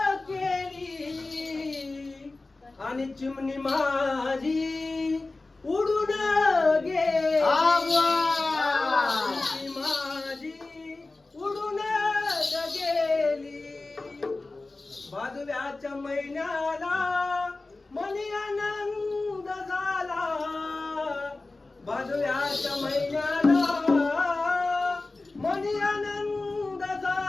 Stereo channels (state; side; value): quieter; right; 3.3 dB